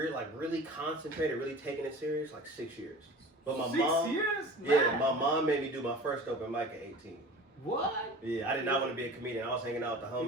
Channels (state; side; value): normal; both; correlation 0.39